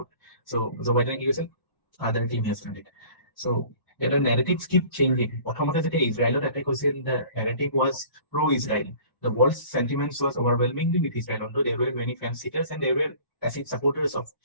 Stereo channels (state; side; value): late; right; 1.0 ms